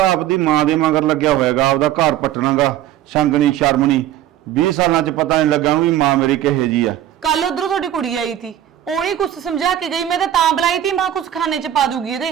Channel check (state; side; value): quieter; left; 11.9 dB